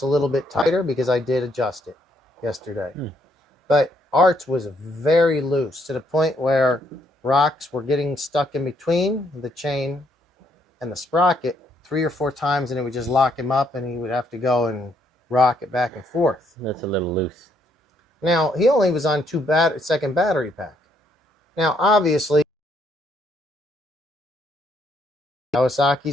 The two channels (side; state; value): both; normal; correlation 0.71